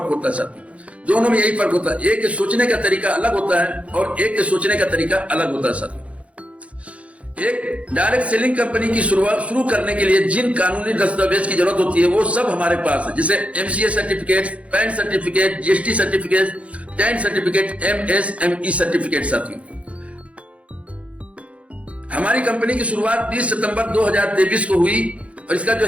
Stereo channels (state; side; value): late; left; 0.063 ms